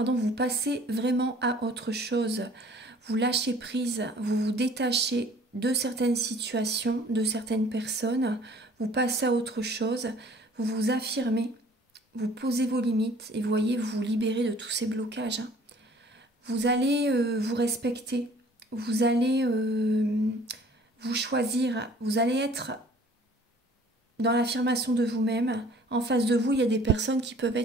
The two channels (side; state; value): both; normal; correlation 0.53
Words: vous passez vraiment à autre chose. Vous lâchez prise, vous vous détachez de certaines situations, de certaines personnes. Vous passez à autre chose, vous vous affirmez, vous posez vos limites et vous voyez, vous vous libérez de tous ces blocages, hein. Vous allez vous respecter, vous allez vous choisir, vous allez être dans l'affirmation de vous-même. En face de vous, il y a des personnes qui peuvent